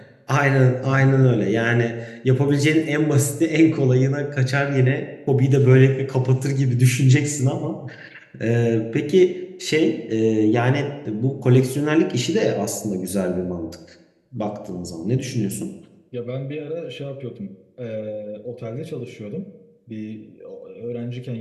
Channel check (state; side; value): identical; both; correlation 1.00